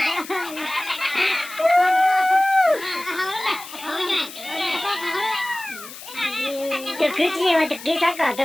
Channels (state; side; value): noise; left; hiss, 14 dB below the sound